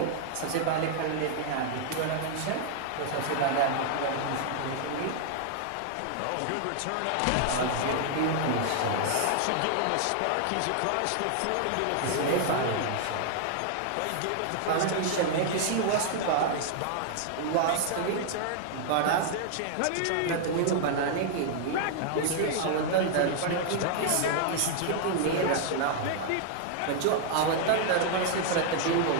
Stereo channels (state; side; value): different; both; correlation 0.00